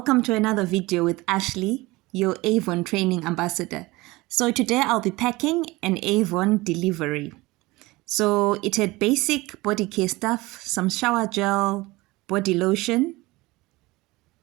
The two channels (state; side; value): quieter; left; 21.1 dB